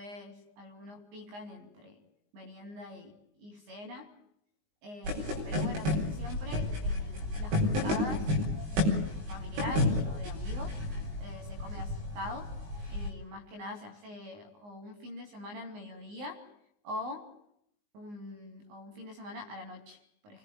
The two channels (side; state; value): left; late; 19 ms